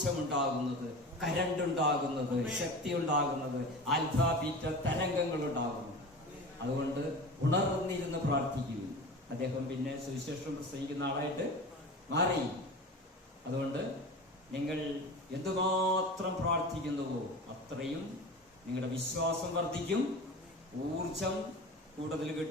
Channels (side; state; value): both; normal; correlation 0.33